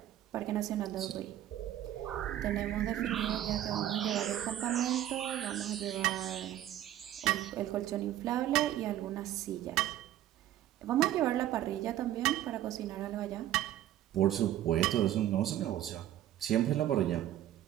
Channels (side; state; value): left; quieter; 12.6 dB